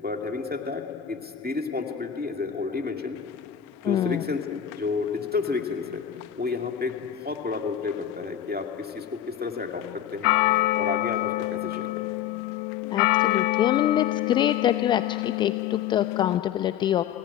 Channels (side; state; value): right; quieter; 9.7 dB